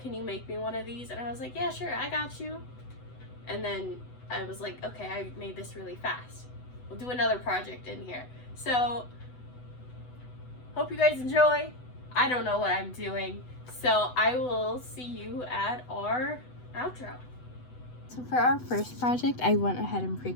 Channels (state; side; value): late; right; 8.0 ms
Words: you make me one of these? And I was like, yeah, sure, I got you. And then I was like, okay, I made this really fast. We'll do another project in here. So, hope you guys enjoy. I don't know what I'm doing. So I will see you at our outro. So for our first project, I went ahead and